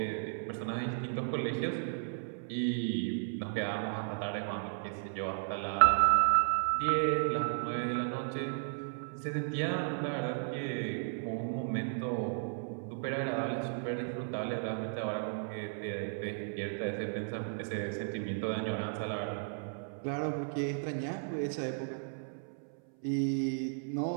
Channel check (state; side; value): silent; left; 55 dB below the other